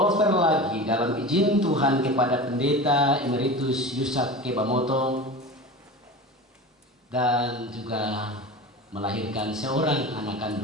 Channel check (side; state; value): both; normal; correlation 0.31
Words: lagi dalam izin Tuhan kepada Pendeta Emeritus Yusak Kebamoto, dan juga melahirkan seorang anak